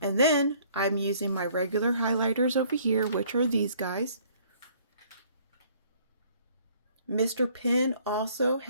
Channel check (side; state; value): both; inverted; correlation -0.59